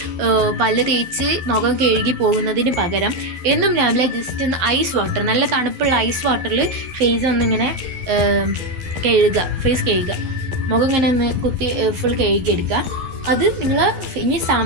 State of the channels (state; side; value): late; left; 12 ms